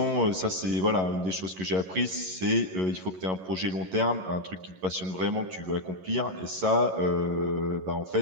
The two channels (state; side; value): late; left; 11 ms